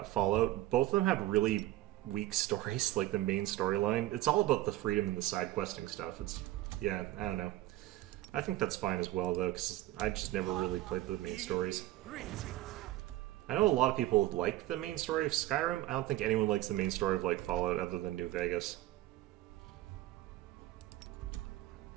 Fallout, both of them have really weak stories, like the main storyline. It's all about the freedom and the side questing stuff. Yeah, I don't know. I think that's fine as well, though, because I just never really played the main stories. I know a lot of people like the main story of Skyrim. I don't think anyone likes the main story of, like, Fallout other than New Vegas.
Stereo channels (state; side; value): quieter; left; 16.1 dB